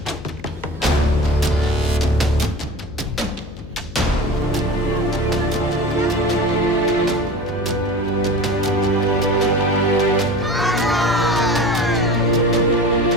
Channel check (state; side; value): noise; left; hum, 14 dB below the sound